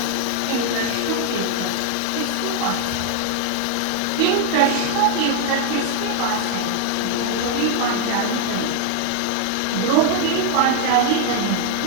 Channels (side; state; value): both; different; correlation 0.00